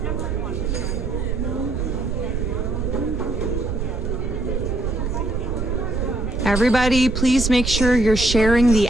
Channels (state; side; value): noise; right; rumble, 2 dB below the sound